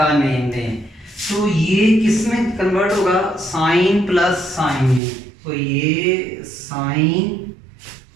नेम दें, तो ये किस में कन्वर्ट होगा, साइन प्लस साइन में। तो ये साइन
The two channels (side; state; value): left; drops out; at 5.0 s